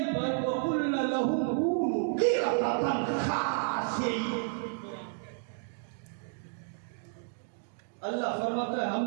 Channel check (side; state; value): left; silent; digital silence